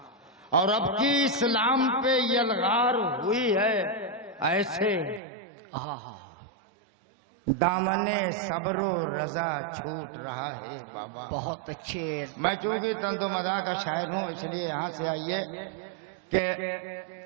और अब की इस्लाम पे यलगार हुई है ऐसे, दामने सब्रो रजा छूट रहा है बाबा। बहुत अच्छे। मैं चूंकि तंदो मदा का शायर हूं, इसलिए यहां से आइए कि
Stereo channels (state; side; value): drops out; left; at 5.2 s